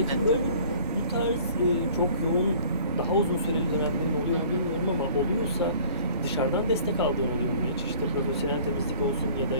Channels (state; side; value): inverted; both; correlation -0.51